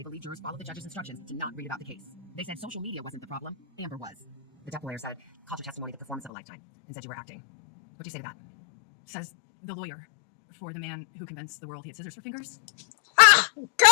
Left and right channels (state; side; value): drops out; right; at 6.3 s